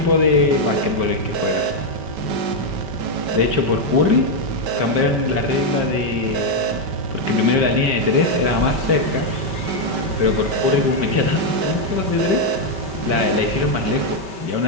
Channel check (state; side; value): late; left; 5.2 ms